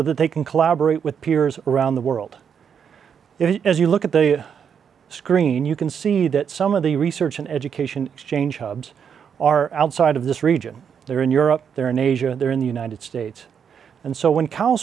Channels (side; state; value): left; quieter; 7.4 dB